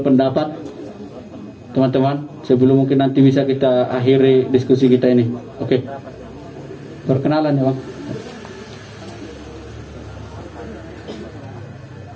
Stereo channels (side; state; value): both; identical; correlation 1.00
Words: Teman-teman, sebelum mungkin nanti bisa kita akhiri diskusi kita ini. Oke. Perkenalan ya, Bang.